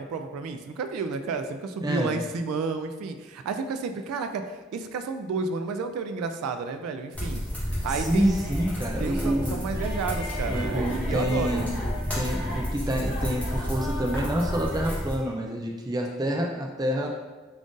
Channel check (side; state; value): both; normal; correlation 0.67